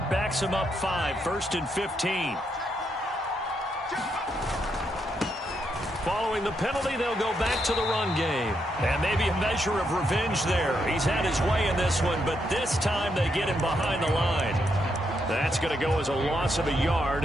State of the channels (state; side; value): normal; both; correlation 0.79